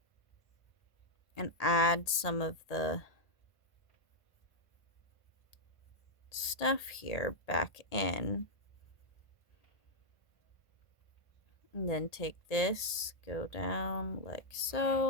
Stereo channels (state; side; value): late; right; 1.8 ms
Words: and add some of the stuff here back in, and then take this, go down like